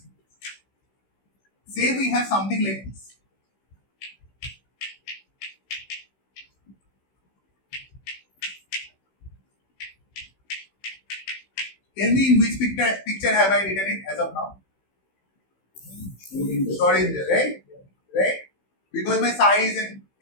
Say we have something like this. Tell me in which picture have I written it as of now? Schrödinger, right? Right? Because my psi is in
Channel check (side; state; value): right; late; 15 ms